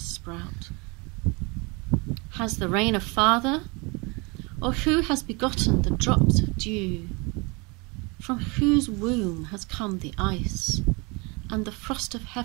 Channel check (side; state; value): left; quieter; 28.5 dB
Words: sprout? Has the rain a father, or who has begotten the drops of dew? From whose womb has come the ice, and the frost of